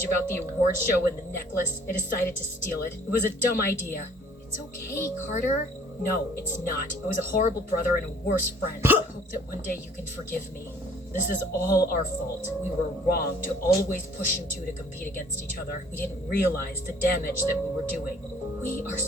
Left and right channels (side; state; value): both; normal; correlation 0.56